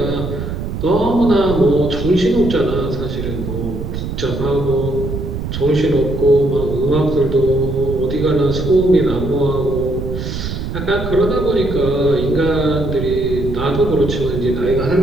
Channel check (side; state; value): right; noise; rumble, 5 dB below the sound